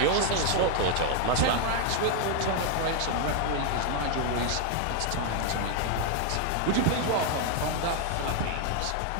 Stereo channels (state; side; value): different; both; correlation 0.01